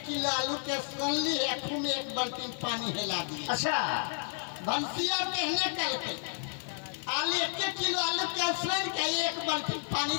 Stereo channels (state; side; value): silent; right; 57 dB below the other